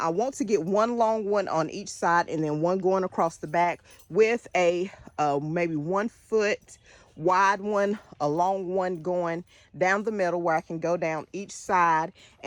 want to get one long one on each side and then one going across the back with a maybe 1 foot wide one, a long one going down the middle where I can go down each side,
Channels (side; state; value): both; identical; correlation 1.00